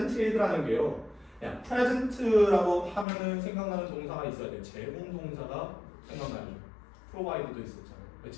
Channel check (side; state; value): right; drops out; at 3.1 s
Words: 게요. 그냥 present라고 하면은 생각나는 동사가 있어야 돼요. 제공 동사가 생각나죠. provide도 있었잖아요.